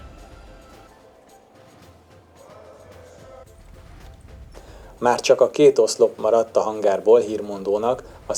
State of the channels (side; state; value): both; identical; correlation 1.00